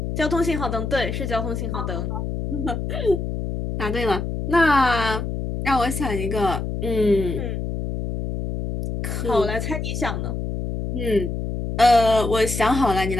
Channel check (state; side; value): noise; left; hum, 4 dB below the sound